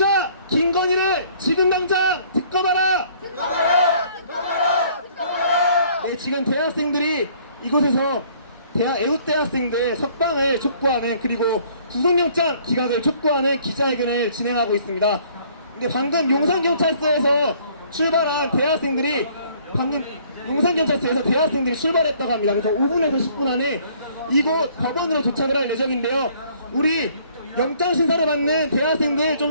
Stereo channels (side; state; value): both; inverted; correlation -0.59